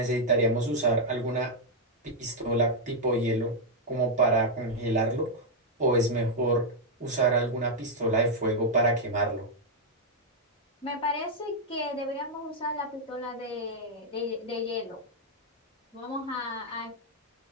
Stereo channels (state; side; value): normal; both; correlation -0.02